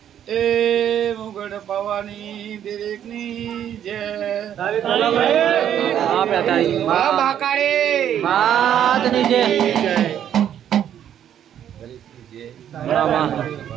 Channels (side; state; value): left; quieter; 10.0 dB